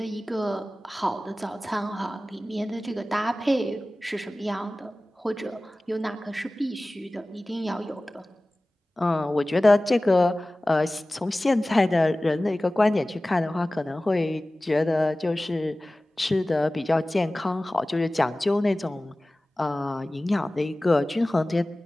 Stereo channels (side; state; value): both; normal; correlation 0.97